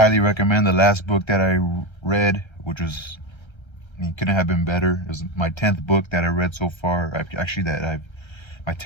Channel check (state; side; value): late; right; 1.3 ms